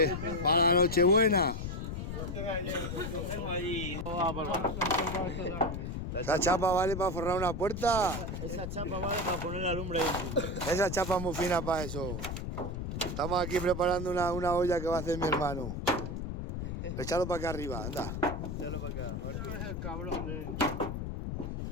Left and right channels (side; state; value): left; noise; rumble, 5 dB below the sound